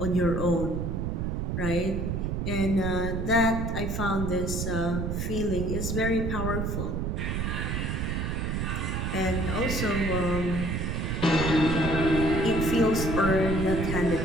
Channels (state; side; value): noise; right; rumble, 1 dB below the sound